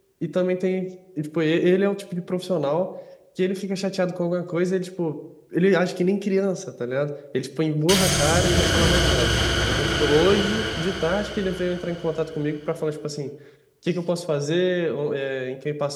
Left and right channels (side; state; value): both; identical; correlation 1.00